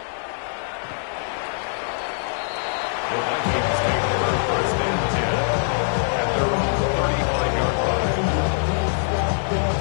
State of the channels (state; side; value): silent; right; digital silence